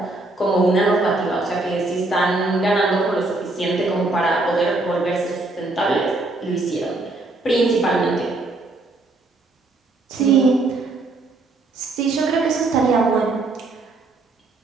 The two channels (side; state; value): left; quieter; 3.1 dB